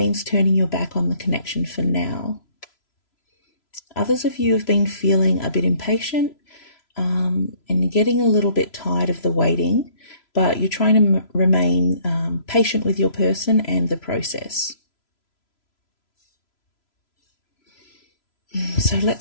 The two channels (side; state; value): right; late; 3.0 ms